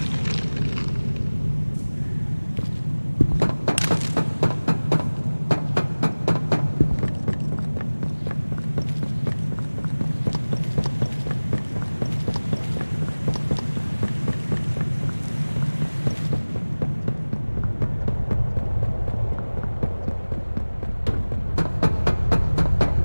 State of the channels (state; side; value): inverted; both; correlation -1.00